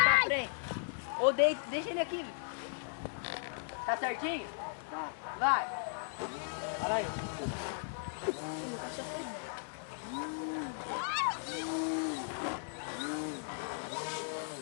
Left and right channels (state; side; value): silent; right; digital silence